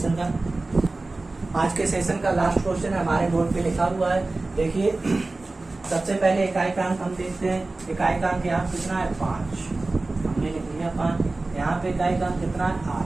का। आज के सेशन का लास्ट क्वेश्चन है, हमारे बोर्ड पे लिखा हुआ है। देखिए सबसे पहले इकाई का अंक हम देखते हैं। इकाई का अंक यहाँ कितना है 5, हमने लिख लिया 5। यहाँ पे इकाई का अंक कितना है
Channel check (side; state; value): left; quieter; 3.2 dB